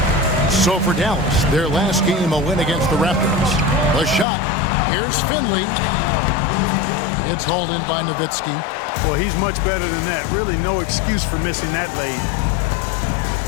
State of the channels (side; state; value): right; drops out; at 4.2 s